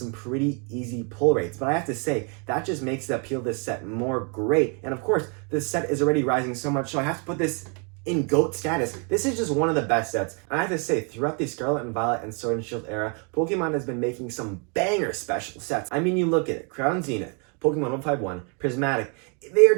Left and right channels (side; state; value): left; quieter; 36.8 dB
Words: pretty easy pull rates, but I have to say, that just makes the appeal of this set more great. And of course, this set is already rising so much, so I have to put this in GOAT status. This is just one of the best sets. And I have to say, throughout the Scarlet and Violet and Sword and Shield era, Pokemon has been making some banger special sets. I mean, you look at it, Crown Zenith, Pokemon 151, Prismatic, they are